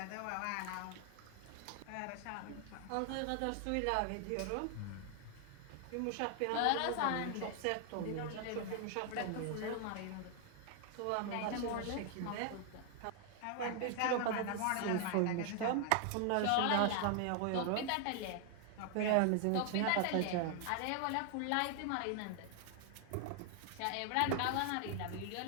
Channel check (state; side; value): different; both; correlation 0.00